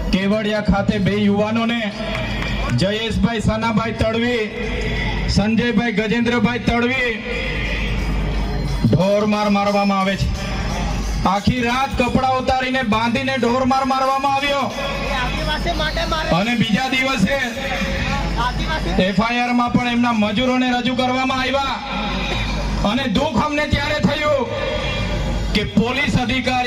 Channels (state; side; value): identical; both; correlation 1.00